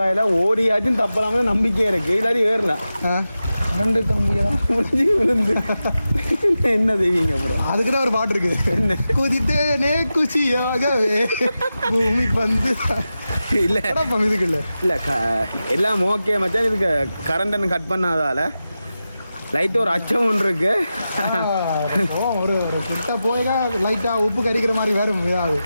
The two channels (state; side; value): inverted; both; correlation -0.92